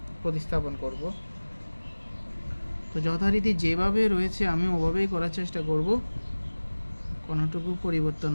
প্রতিস্থাপন করব। তো যথারীতি যেভাবে রয়েছে আমি ওভাবেই করার চেষ্টা করব, কোনোটুকু পরিবর্তন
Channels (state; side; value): inverted; both; correlation -1.00